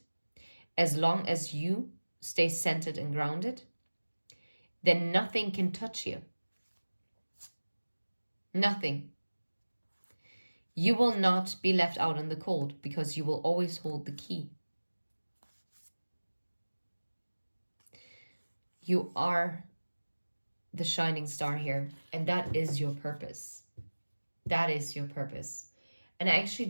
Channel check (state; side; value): inverted; both; correlation -1.00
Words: as long as you stay centered and grounded. Then nothing can touch you. Nothing. You will not be left out in the cold because you will always hold the key. You are the shining star here, and that is your purpose. That is your purpose. And I actually